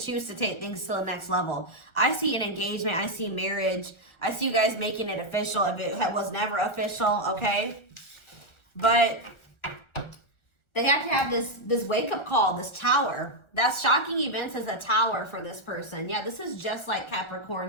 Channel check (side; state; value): right; late; 1.4 ms